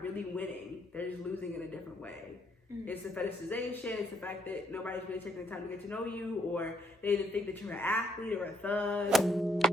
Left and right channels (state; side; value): normal; both; correlation 0.71